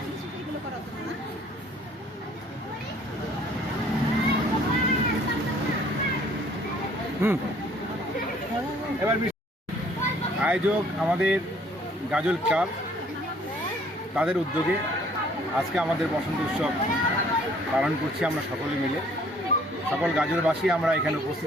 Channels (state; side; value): normal; both; correlation 0.58